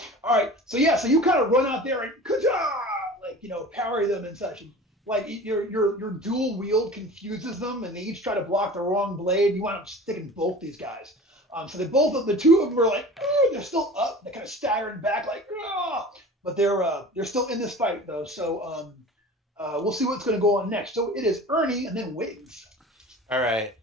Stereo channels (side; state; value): both; normal; correlation 0.39